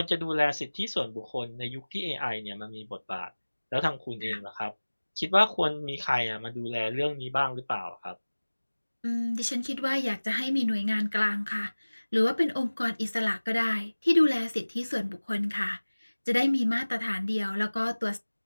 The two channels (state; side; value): inverted; both; correlation -1.00